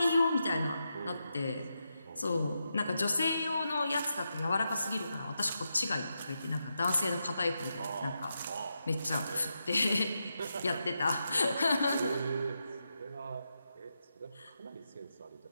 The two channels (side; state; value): both; inverted; correlation -0.86